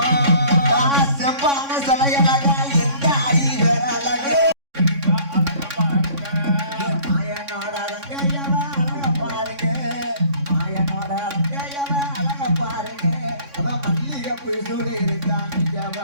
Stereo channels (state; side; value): late; left; 3.6 ms